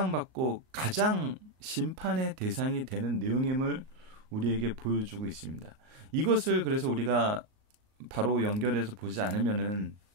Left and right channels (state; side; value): late; left; 38 ms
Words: 가장 심판의 대상이 되는 내용임을 우리에게 보여주고 있습니다. 이것을 그래서 우리가 바로 연결해서 보지 않으면은